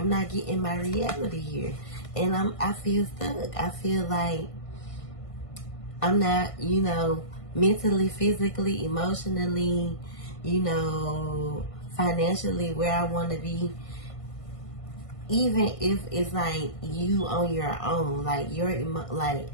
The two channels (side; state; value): right; late; 1.5 ms